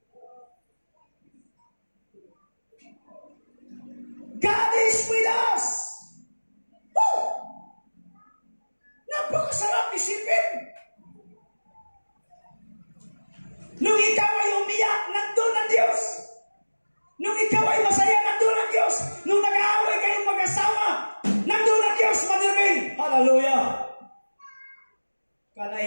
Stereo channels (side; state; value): both; inverted; correlation -1.00